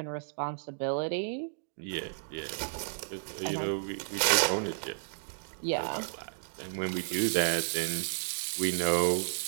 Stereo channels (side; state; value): left; silent; digital silence